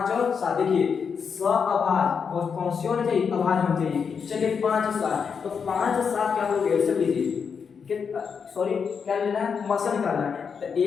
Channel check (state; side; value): quieter; right; 6.3 dB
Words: और 7 देखिए सअभाज्य, और कौन सी होनी चाहिए, अभाज्य होनी चाहिए। चलिए 5 और 7, तो 5 और 7 क्या हो गया, सब लीजिए, सॉरी क्या लेना है, मसा निकालना है। तो